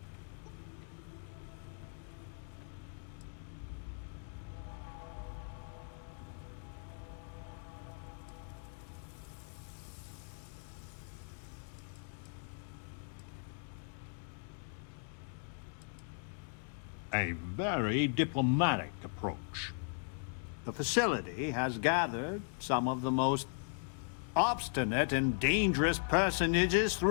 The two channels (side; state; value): right; silent; 52 dB below the other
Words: A very diplomatic approach. The facility has gathered some of the most obstinate and dangerous personages